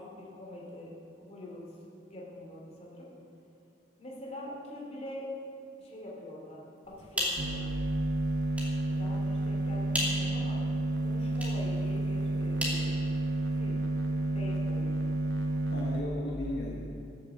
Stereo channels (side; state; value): both; normal; correlation 0.74